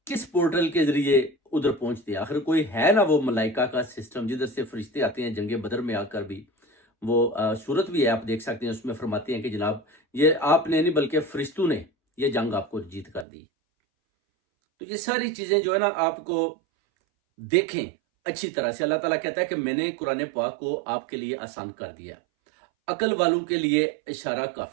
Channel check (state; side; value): drops out; left; at 13.2 s